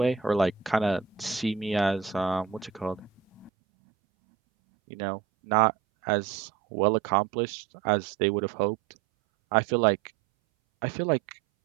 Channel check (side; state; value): left; drops out; at 3.5 s